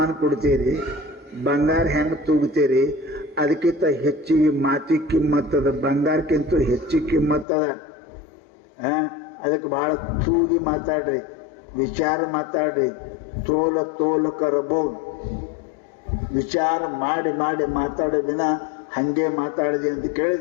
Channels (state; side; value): drops out; right; at 7.5 s